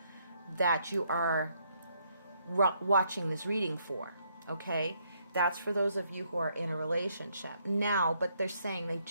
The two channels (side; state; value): both; inverted; correlation -0.72